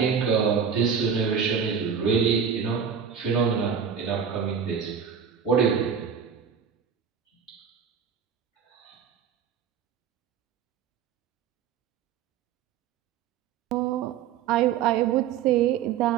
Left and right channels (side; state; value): left; quieter; 7.3 dB